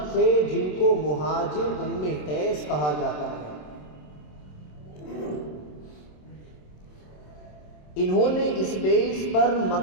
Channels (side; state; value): right; late; 27 ms